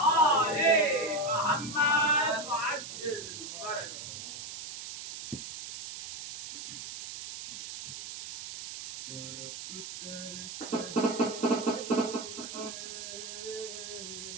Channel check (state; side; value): noise; right; hiss, 9 dB below the sound